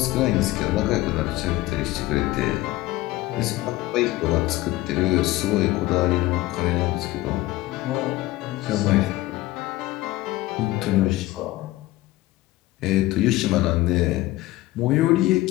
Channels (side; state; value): right; quieter; 17.7 dB